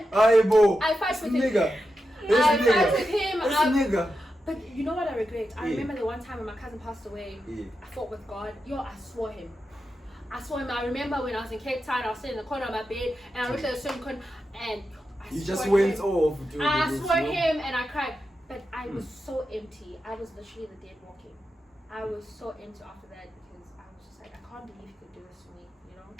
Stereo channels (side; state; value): both; normal; correlation 0.89